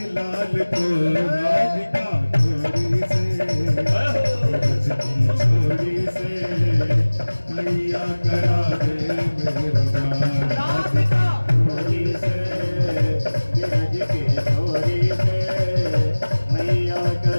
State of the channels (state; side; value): inverted; both; correlation -1.00